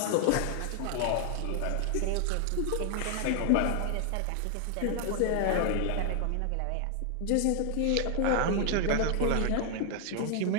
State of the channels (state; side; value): different; both; correlation 0.00